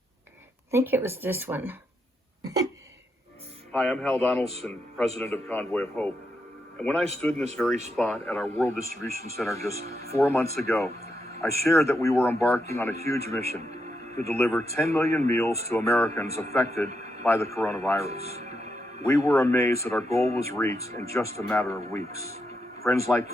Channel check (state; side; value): normal; both; correlation 0.82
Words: I think it was this one. Hi, I'm Hal Donaldson, president of Convoy of Hope. And when I stood in this very spot at our World Distribution Center just 4 months ago, I shared that we were embarking on a huge mission to deliver 10 million meals to Americans affected by the coronavirus. We were amazed that our goal was reached in just a matter of weeks. Friends